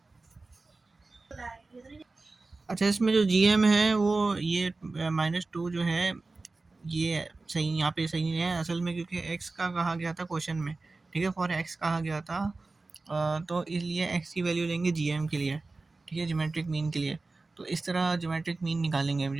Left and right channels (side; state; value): left; quieter; 3.5 dB